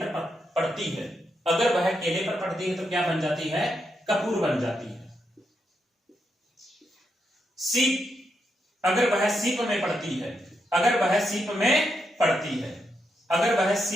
पड़ती है, अगर वह केले पर पड़ती है तो क्या बन जाती है? कपूर बन जाती है। सीप अगर वह सीप में पड़ती है, अगर वह सीप में पड़ती है, अगर वह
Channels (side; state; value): both; normal; correlation 0.82